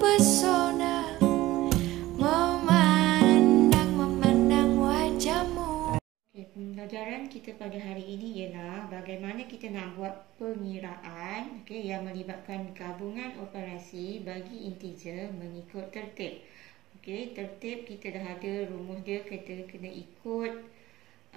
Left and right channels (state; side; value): quieter; left; 16.8 dB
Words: memandang wajahmu. Pembelajaran kita pada hari ini ialah bagaimana kita nak buat pengiraan yang melibatkan gabungan operasi bagi integer mengikut tertib. Tertib kita dah ada rumus dia, kita kena ikut